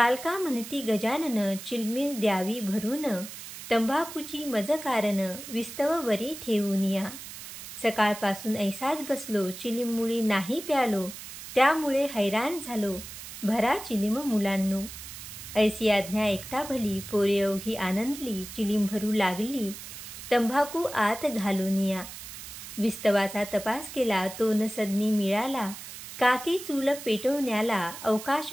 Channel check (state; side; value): noise; right; hiss, 12 dB below the sound